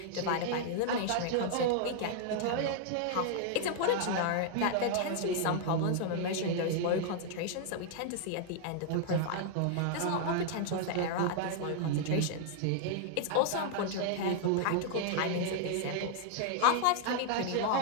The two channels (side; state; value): both; different; correlation -0.01